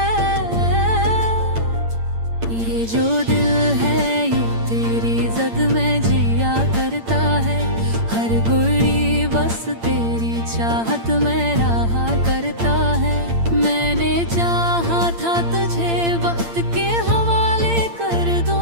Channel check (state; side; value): late; left; 8.8 ms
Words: ये जो दिल है ये तेरी जद में जिया करता है। हर घड़ी बस तेरी चाहत में रहा करता है। मैंने चाहा था तुझे वक्त के हवाले कर